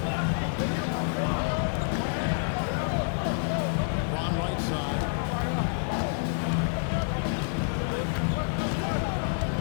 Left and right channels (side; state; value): right; silent; 59 dB below the other